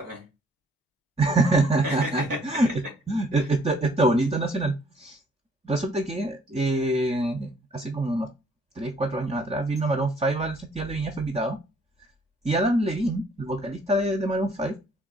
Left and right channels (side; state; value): both; normal; correlation 0.62